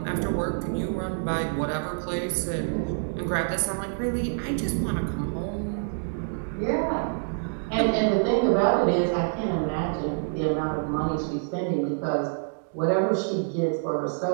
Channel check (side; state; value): left; silent; digital silence